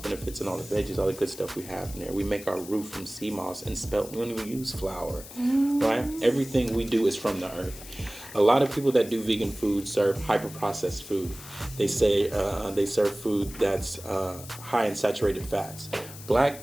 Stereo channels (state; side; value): noise; left; hiss, 15 dB below the sound